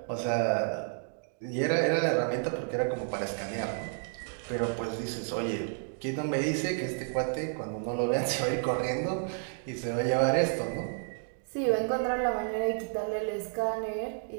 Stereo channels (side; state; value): left; silent; 57 dB below the other